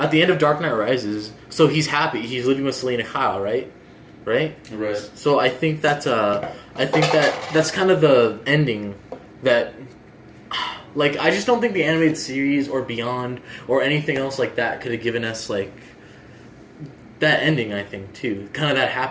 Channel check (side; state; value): both; identical; correlation 1.00